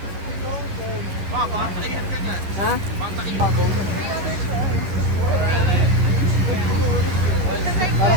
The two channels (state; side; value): late; left; 10 ms